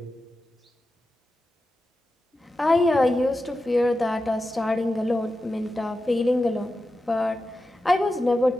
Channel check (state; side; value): normal; both; correlation 0.92